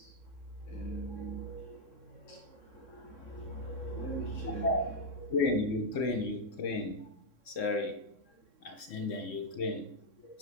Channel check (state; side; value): late; right; 3.6 ms